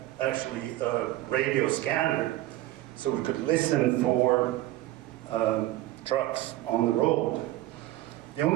actually a radio scanner, so we could listen for trucks on the road. The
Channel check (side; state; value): left; quieter; 16.0 dB